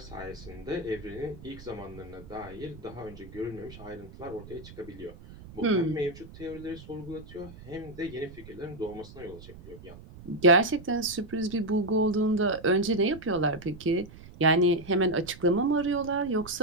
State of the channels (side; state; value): right; noise; rumble, 17 dB below the sound